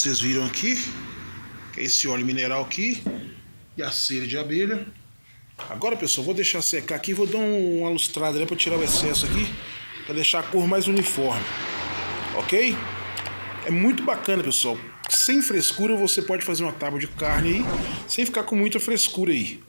viram aqui, que é esse óleo mineral aqui, e a cera de abelha. Agora, pessoal, vou deixar secar aqui, vou dar uma lustrada, né, para tirar o excesso aqui, para deixar a cor mais uniforme, ok? É muito bacana, pessoal. Sem frescura você pode fazer uma tábua de carne aí, sem ficar com muita frescura aí,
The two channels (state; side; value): inverted; both; correlation -1.00